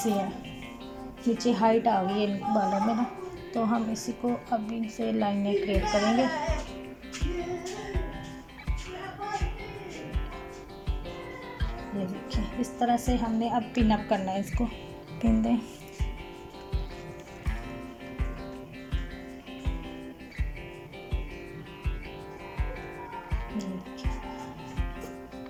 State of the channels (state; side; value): identical; both; correlation 1.00